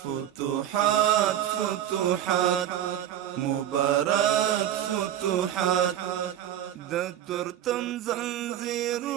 فتوحات فتوحات مبارك فتوحات د ترتم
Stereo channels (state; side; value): quieter; left; 11.1 dB